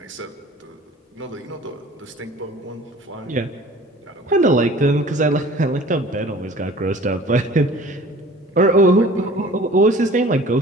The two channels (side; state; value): both; normal; correlation 0.47